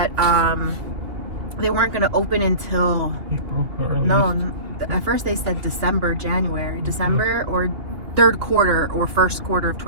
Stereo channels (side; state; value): left; late; 2.8 ms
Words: they weren't going to open until April. At first they said December or third quarter or first quarter of